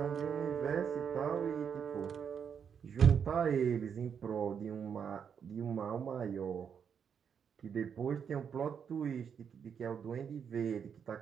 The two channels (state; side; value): quieter; left; 7.3 dB